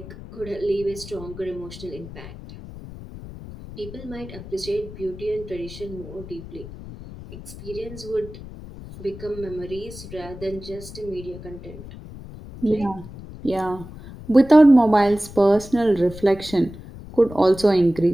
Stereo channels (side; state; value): left; noise; rumble, 14 dB below the sound